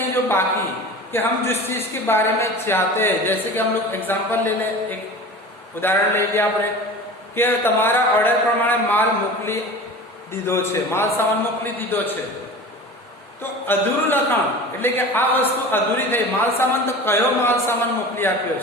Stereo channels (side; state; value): both; normal; correlation 0.36